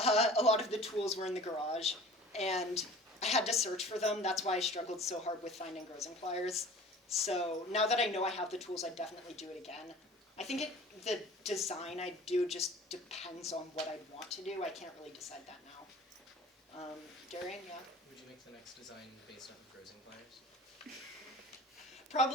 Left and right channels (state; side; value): normal; both; correlation 0.43